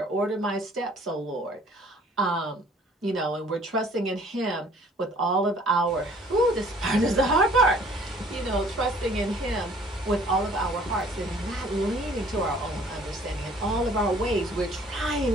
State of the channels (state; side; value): normal; both; correlation 0.55